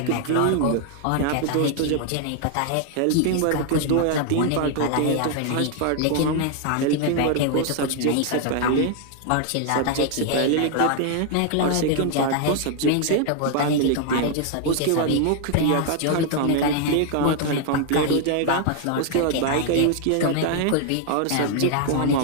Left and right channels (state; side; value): different; both; correlation 0.00